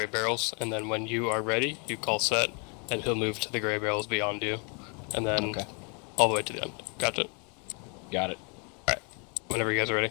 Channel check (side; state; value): right; quieter; 35.8 dB